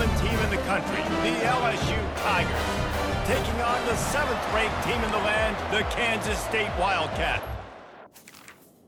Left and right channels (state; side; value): identical; both; correlation 1.00